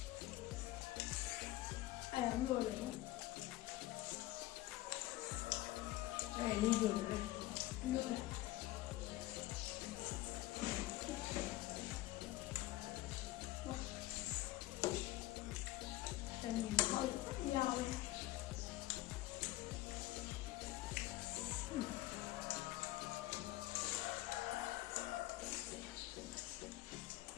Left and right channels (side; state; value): right; quieter; 16.9 dB